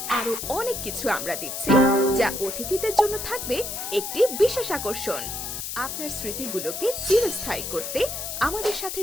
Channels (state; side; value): noise; left; hiss, 5 dB below the sound